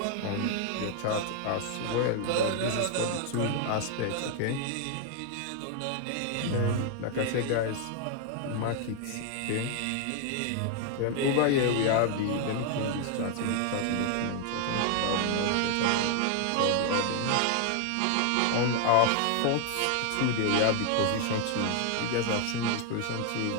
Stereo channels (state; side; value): different; both; correlation 0.00